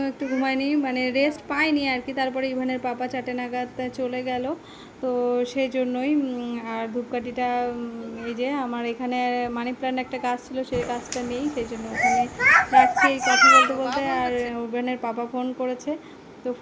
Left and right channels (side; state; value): both; identical; correlation 1.00